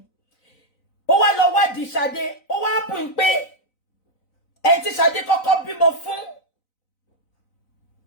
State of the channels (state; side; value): late; right; 3.9 ms